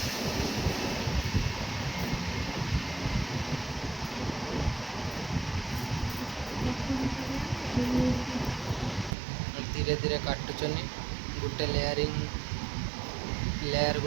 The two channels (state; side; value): drops out; left; at 9.1 s